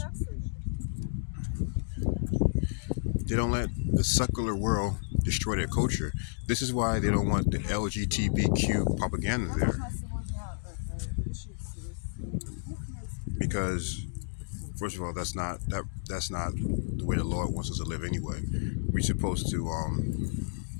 They don't let the secular world destroy their culture. This is why they don't want the LGBTQ propaganda there, because first of all, that's not the way the Lord wants us to live anyway. We're supposed to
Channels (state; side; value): silent; right; digital silence